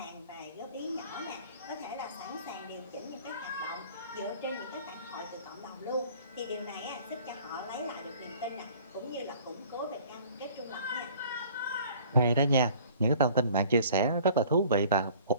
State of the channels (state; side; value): inverted; both; correlation -0.51